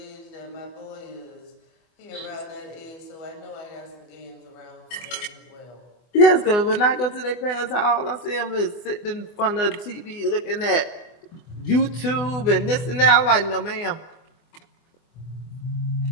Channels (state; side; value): late; right; 24 ms